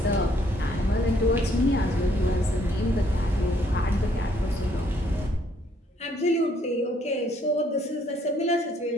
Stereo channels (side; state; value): both; normal; correlation 0.67